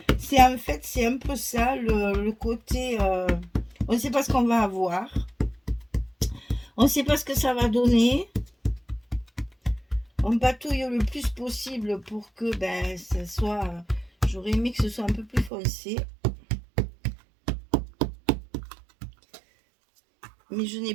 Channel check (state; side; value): drops out; left; at 15.5 s